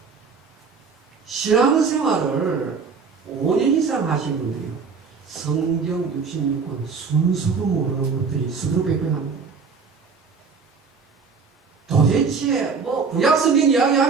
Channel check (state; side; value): quieter; left; 5.3 dB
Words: 신앙생활을 5년 이상 하신 분들이요, 성경 66권 순서도 모르는 것들이 수두룩백백합니다. 도대체 뭐 구약 성경